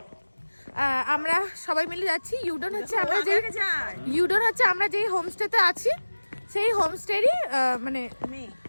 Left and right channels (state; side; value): inverted; both; correlation -1.00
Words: আমরা সবাই মিলে যাচ্ছি। ইউডেন হচ্ছে আমরা যেই হোমস্টেতে আছি সেই হোমস্টেরই মানে